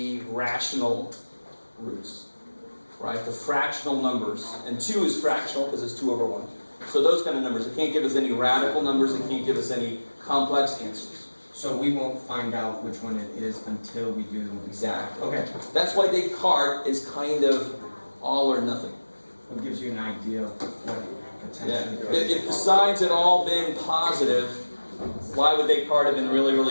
rational roots, right? The fractional numbers. And 2 is fractional because it's 2 over 1. So those kind of numbers. It can't give us any radical numbers. It can't give us any complex answers. So we won't find out which one it is until we do. Exactly. Okay. That's why Descartes is kind of all or nothing. It gives you an idea of what Yeah. potentially. If the signs had all been positive, why would Descartes have been really,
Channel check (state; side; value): inverted; both; correlation -1.00